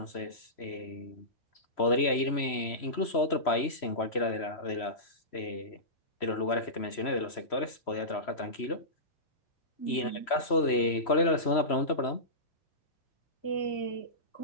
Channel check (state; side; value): late; right; 3.1 ms